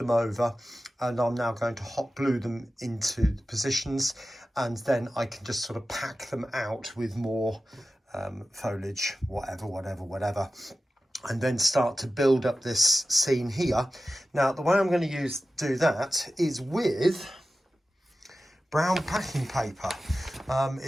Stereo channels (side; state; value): both; normal; correlation 0.94